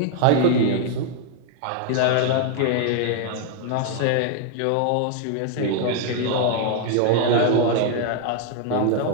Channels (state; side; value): different; both; correlation 0.00